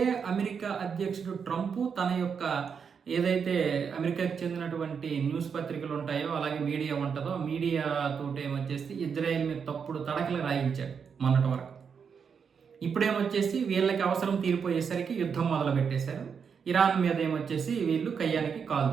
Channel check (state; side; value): quieter; left; 6.5 dB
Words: అమెరికా అధ్యక్షుడు ట్రంప్ తన యొక్క ఏదైతే అమెరికాకి చెందినటువంటి న్యూస్ పత్రికలు ఉంటాయో అలాగే మీడియా ఉంటుందో మీడియాతోటి ఏమొచ్చేసి ఇజ్రాయెల్ మీద తప్పుడు తడకలు రాయించాడు మొన్నటి వరకు. ఇప్పుడేమొచ్చేసి వీళ్ళకి అవసరం తీరిపోయేసరికి యుద్ధం మొదలు పెట్టేశారు. ఇరాన్ మీద ఏమొచ్చేసి వీళ్ళు కయ్యానికి కాలు